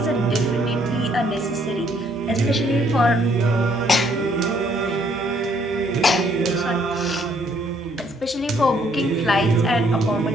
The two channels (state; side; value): normal; both; correlation 0.67